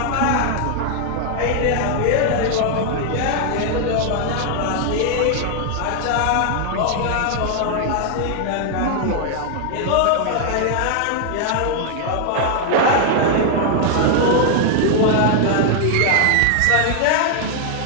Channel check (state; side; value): different; both; correlation 0.00